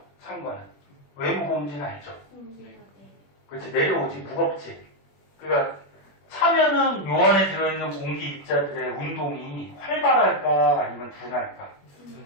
찬 거는. 왜 무거운지는 알죠? 그렇지, 내려오지. 무겁지. 그러니까 차면은 요 안에 들어있는 공기 입자들의 운동이 활발할까 아니면 둔할까?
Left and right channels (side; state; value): right; late; 21 ms